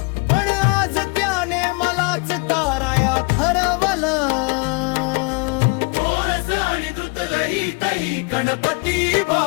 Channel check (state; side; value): quieter; right; 30.6 dB